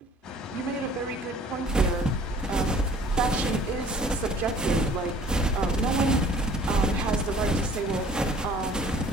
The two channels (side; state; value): both; normal; correlation 0.53